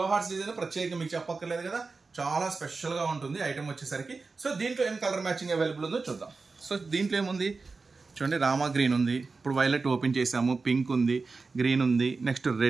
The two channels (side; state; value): left; quieter; 4.1 dB